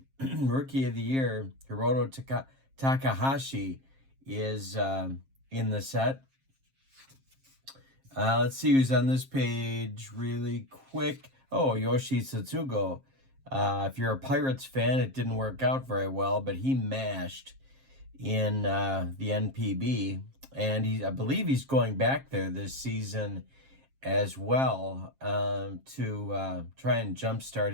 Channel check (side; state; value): left; late; 7.5 ms